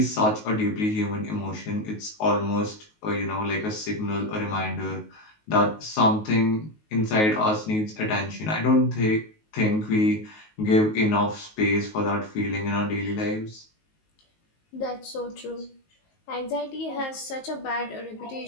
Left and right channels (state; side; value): late; right; 19 ms